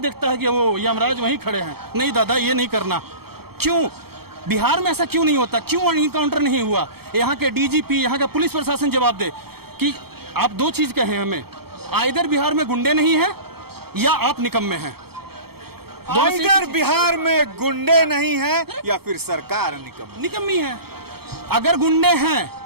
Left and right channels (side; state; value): left; late; 0.96 ms